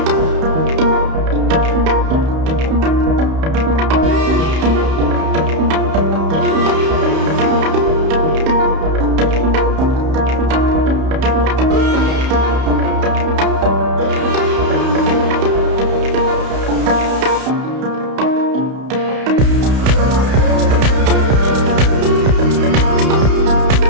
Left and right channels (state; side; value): late; left; 31 ms